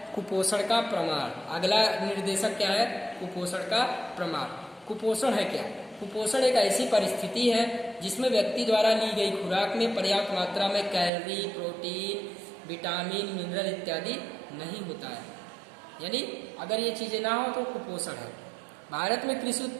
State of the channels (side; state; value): left; drops out; at 11.1 s